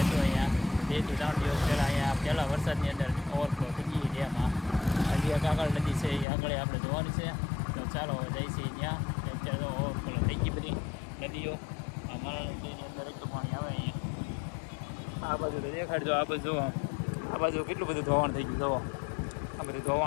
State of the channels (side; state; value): right; drops out; at 6.2 s